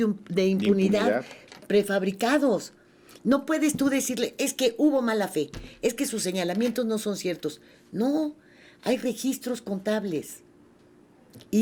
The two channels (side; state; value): both; identical; correlation 1.00